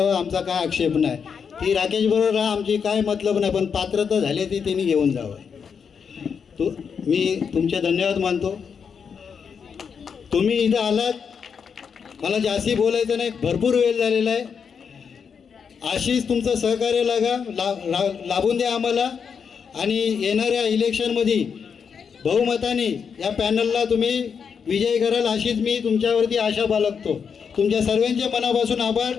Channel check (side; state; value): right; quieter; 6.5 dB